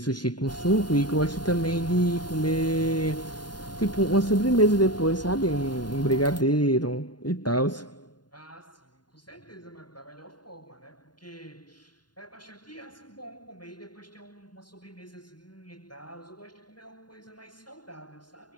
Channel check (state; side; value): late; right; 0.70 ms